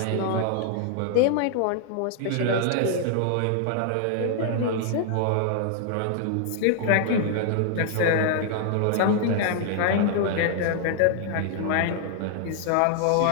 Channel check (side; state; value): both; different; correlation 0.00